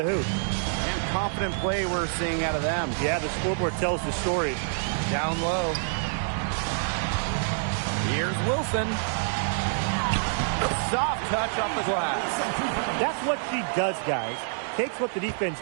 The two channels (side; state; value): left; silent; digital silence